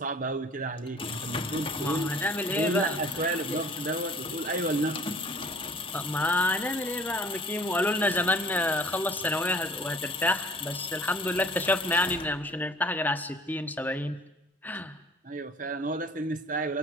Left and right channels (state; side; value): normal; both; correlation 0.50